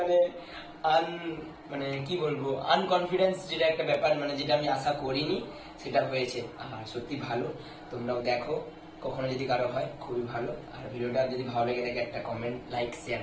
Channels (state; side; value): identical; both; correlation 1.00